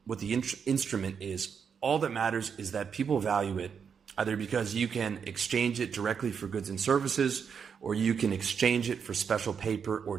instrument is. All that matters is that people value it, either because you can exchange it directly for goods and services, or you can exchange it for special paper or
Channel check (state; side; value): quieter; left; 6.8 dB